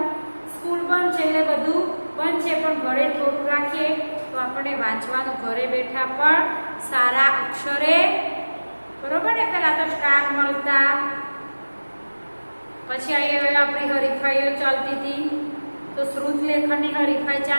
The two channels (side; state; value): both; inverted; correlation -1.00